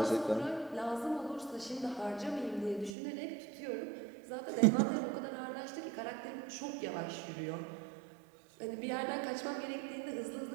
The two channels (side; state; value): left; drops out; at 2.9 s